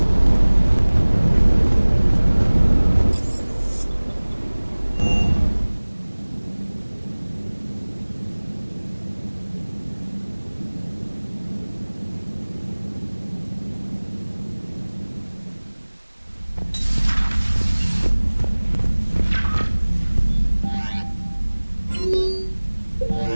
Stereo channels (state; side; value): inverted; both; correlation -1.00